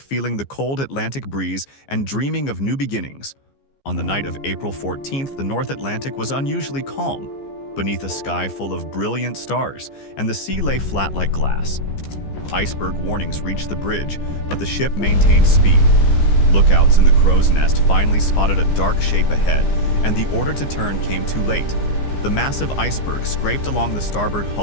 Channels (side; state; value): right; late; 15 ms